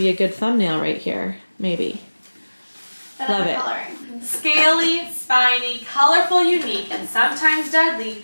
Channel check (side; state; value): both; inverted; correlation -1.00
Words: a good thumbnail right here, maybe. Love it. Scaly, spiny, colorful, unique, and sometimes deadly,